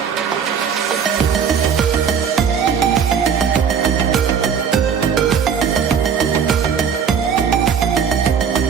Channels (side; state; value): left; quieter; 7.1 dB